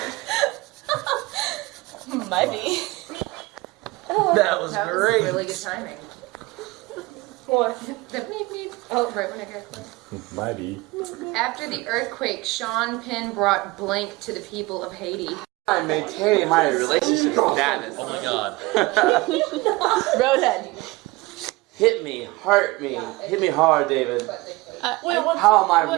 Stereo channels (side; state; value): left; quieter; 22.0 dB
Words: Maybe. That was great. Really good timing. What? The beep beep. Oh, right when I heard it. Mighty. After the earthquake, Sean Penn brought blank to the people of Haiti. I'm maintaining my relationship status. Oh my god. Roadhead. Hit me, hurt me, hit me hard, David. Wait, what? How am I